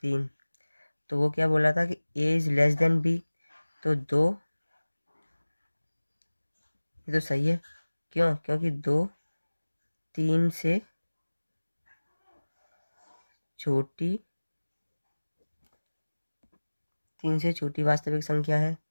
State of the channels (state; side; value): inverted; both; correlation -1.00